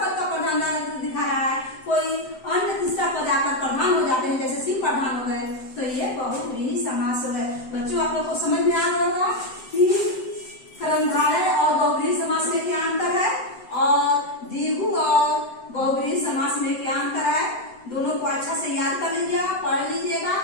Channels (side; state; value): right; late; 7.8 ms